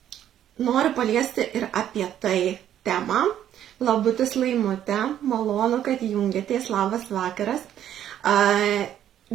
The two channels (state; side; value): quieter; left; 10.8 dB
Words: noriu paliesti ir apie tai temą. Labutis Laimutė, malonu, kad jungiatės, labas vakaras.